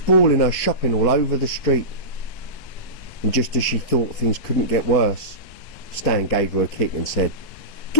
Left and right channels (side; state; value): right; late; 4.6 ms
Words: her shopping all over the street. And just as she thought things couldn't get worse, Stan gave her a kick and said,